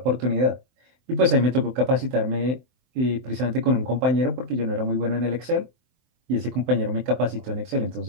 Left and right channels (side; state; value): left; late; 23 ms